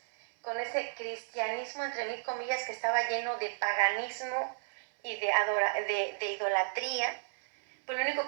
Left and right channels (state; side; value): silent; left; digital silence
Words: con ese cristianismo entre mil comillas que estaba lleno de paganismo y de idolatría, pues lo único